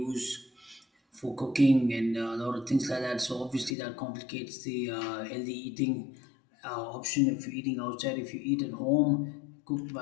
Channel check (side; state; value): right; drops out; at 3.8 s